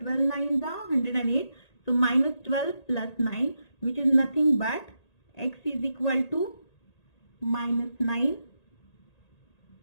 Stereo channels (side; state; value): right; late; 1.8 ms